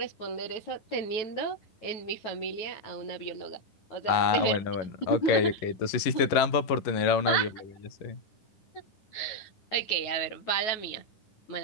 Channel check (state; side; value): late; right; 11 ms